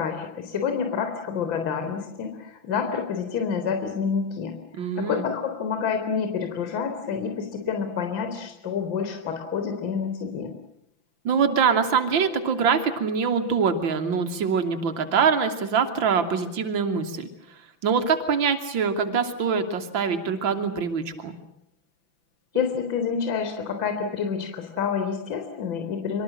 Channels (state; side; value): late; left; 5.9 ms